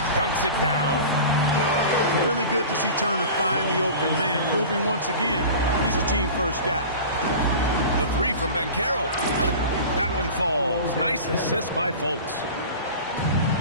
dunks it down. Really good to see Turner find the open man, proving once again he's a team-first guy. The three from Banchero. That one falls. Nice assist by Fultz.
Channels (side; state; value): both; inverted; correlation -0.36